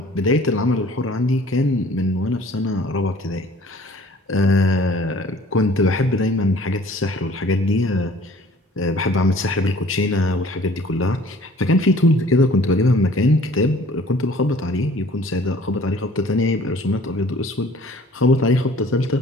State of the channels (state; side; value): normal; both; correlation 0.51